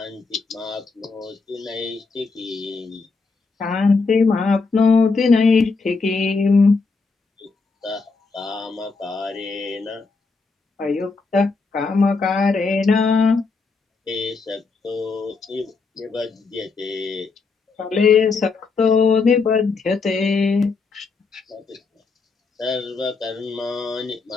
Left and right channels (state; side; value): quieter; right; 4.4 dB